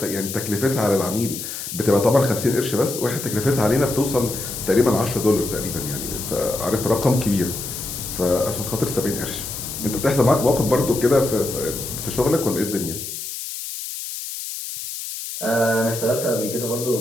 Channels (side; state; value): left; noise; hiss, 7 dB below the sound